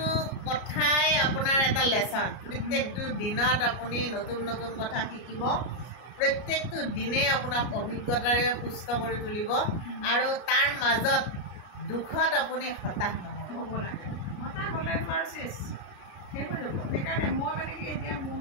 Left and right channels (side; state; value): right; late; 33 ms